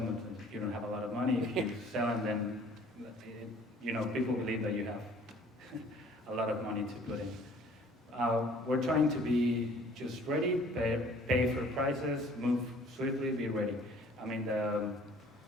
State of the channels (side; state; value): both; normal; correlation 0.54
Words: you don't have a lot of money. If you sell them, then people believe that you have a lot of money to put in. We're trying to be just ready, pay for prices, move swiftly, be ready. I mean,